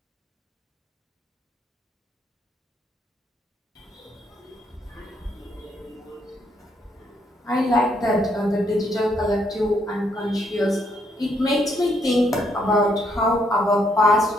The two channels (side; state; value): both; normal; correlation 0.72